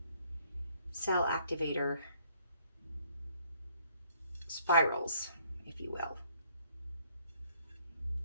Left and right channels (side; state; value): both; inverted; correlation -0.65